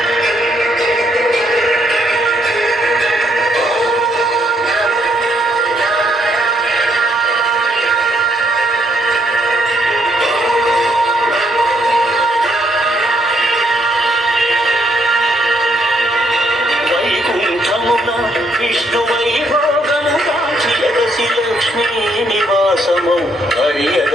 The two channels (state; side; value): normal; both; correlation 0.72